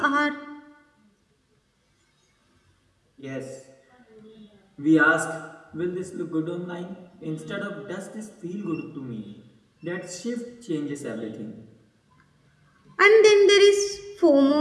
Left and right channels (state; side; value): identical; both; correlation 1.00